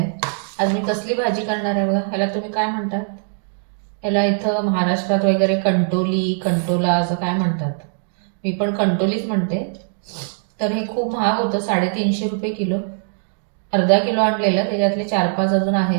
आज मी कसली भाजी करणार आहे बघा। ह्याला तुम्ही काय म्हणतात? ह्याला इथं महाराष्ट्रात वगैरे कंटोली, कंटोला असं काय म्हणतात। मी पण कंटोलीच म्हणते। तर हे खूप महाग होतं, 350 रुपये किलो। अर्धा किलो आणलेलं, त्याच्यातले 4-5 अजून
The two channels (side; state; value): left; silent; 65 dB below the other